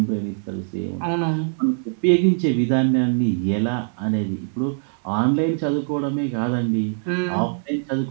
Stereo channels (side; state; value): left; silent; digital silence